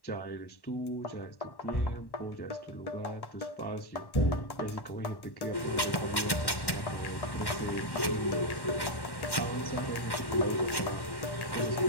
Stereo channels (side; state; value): right; late; 1.1 ms